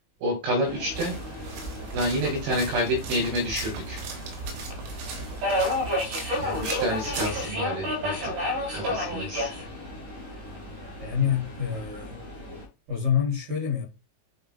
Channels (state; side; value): late; left; 18 ms